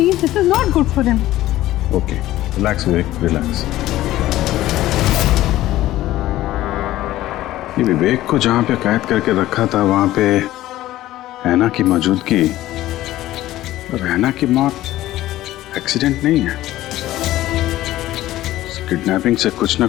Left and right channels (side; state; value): right; quieter; 15.2 dB